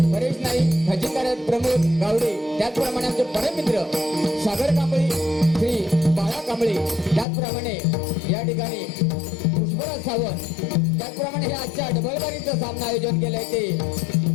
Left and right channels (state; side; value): drops out; right; at 7.2 s